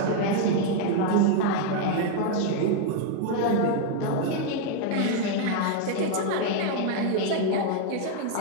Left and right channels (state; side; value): different; both; correlation 0.00